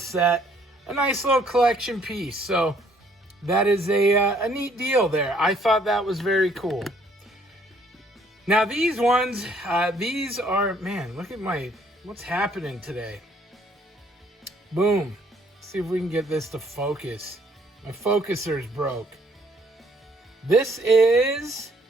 A nice little collection piece. So that is a neat deal there. I thought that was very cool. Now these ones, these are, man, look at what's happening today. Boom. Let's see if we can get this to focus. My focuser's broke. This is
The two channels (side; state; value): both; normal; correlation 0.64